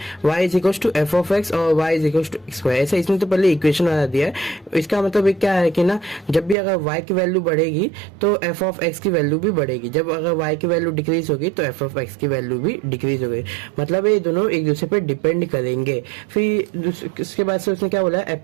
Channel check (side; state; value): left; drops out; at 6.6 s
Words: y is equal to F of X और y is equal to X square. ऐसा इसने तो पहले इक्वेशन बना दिया है। इसका मतलब ये क्या है कि ना, जब भी अगर y की वैल्यू बढ़ेगी तो एफ ऑफ एक्स की वैल्यू भी बढ़ेगी, जब अगर y की वैल्यू डिक्रीज होगी तो एफ ऑफ एक्स की वैल्यू भी डिक्रीज होगी। मतलब ये दोनों एक दूसरे पे डिपेंड करेंगे। फिर इसके बाद से उसने क्या बोला,